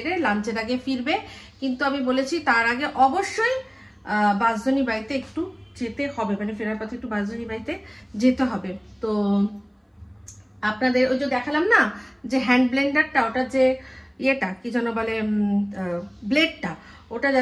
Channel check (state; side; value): identical; both; correlation 1.00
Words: লাঞ্চের আগে ফিরবে, কিন্তু আমি বলেছি তার আগে অবশ্যই বাঁশধনী বাড়িতে একটু যেতে হবে, মানে ফেরার পথে একটু বাঁশধনী বাড়িতে যেতে হবে। তো আপনাদের ওই যে দেখালাম না যে হ্যান্ড ব্লেন্ডারটা, ওটা যে ইয়েটা কি যেন বলে, ব্লেডটা, ওটা